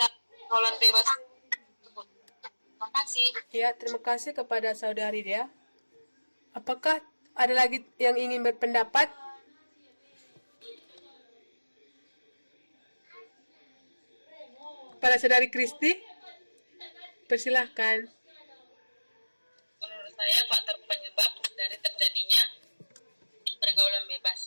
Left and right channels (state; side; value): inverted; both; correlation -1.00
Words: bebas tersebut. Terima kasih. Ya, terima kasih kepada saudari Dea. Apakah ada lagi yang ingin berpendapat? Kepada saudari Kristi, persilahkan. Menurut saya faktor penyebab dari terjadinya pergaulan